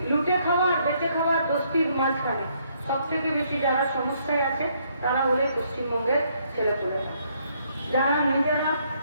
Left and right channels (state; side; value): inverted; both; correlation -0.70